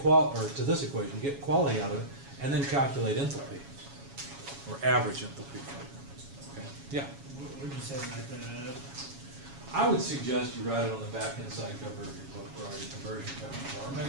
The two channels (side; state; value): left; late; 7.2 ms